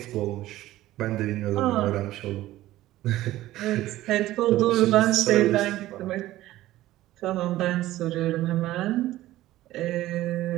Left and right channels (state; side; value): quieter; left; 15.5 dB